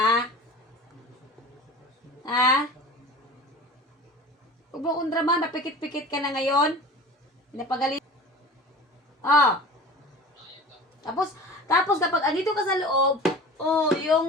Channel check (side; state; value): both; normal; correlation 0.38